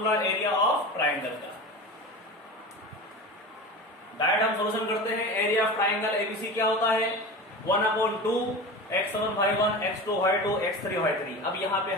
एरिया ऑफ ट्राइंगल का। डायरेक्ट हम सॉल्यूशन करते हैं। एरिया ऑफ ट्राइंगल एबीसी क्या होता है, 1/2 x1 y1 x2 y2 x3 y3। अब यहाँ पे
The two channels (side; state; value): both; normal; correlation 0.30